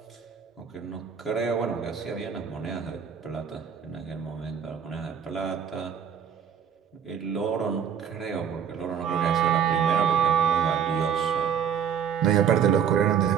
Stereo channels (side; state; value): left; quieter; 7.9 dB